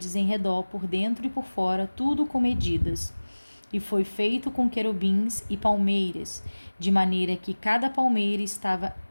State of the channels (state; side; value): inverted; both; correlation -1.00